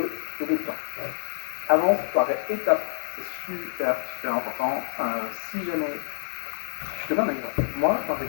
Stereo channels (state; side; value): silent; right; digital silence